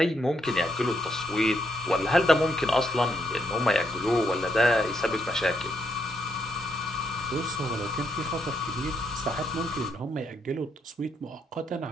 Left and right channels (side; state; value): both; normal; correlation 0.77